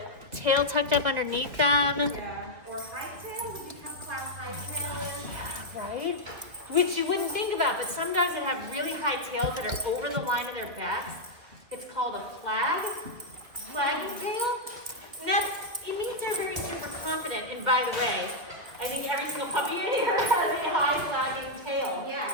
tail tucked up underneath them. Yeah. Or high tail, would you class high tail? Right? Which you wouldn't think about, but some dogs that have really high tails that are over the line of their backs, it's called a flagging tail. And that, it means they're very super confident. And by the way, I think every single puppy in here has a high flagging tail.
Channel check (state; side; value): late; left; 2.0 ms